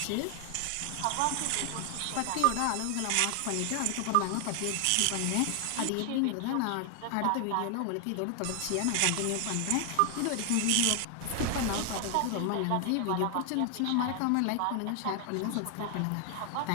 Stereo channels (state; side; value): different; both; correlation 0.00